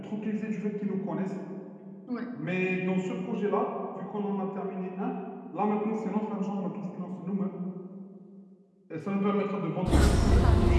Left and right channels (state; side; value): identical; both; correlation 1.00